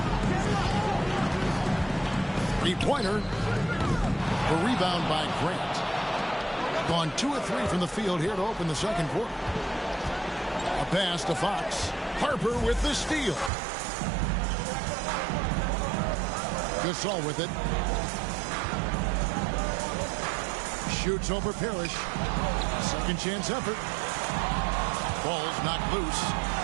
Three-pointer. The rebound by Grant. Gone 2 of 3 from the field here to open the second quarter. A pass to Fox. Harper with the steal. Gasol with it. Shoots over Parrish. Second chance effort. Ball's knocked loose.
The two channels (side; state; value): left; drops out; at 13.5 s